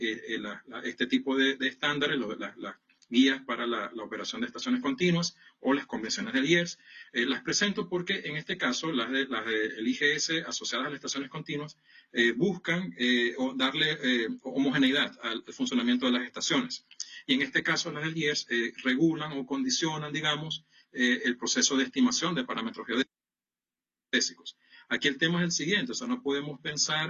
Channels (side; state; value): both; identical; correlation 1.00